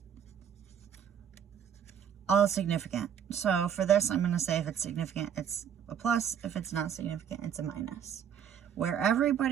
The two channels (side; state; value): left; quieter; 8.6 dB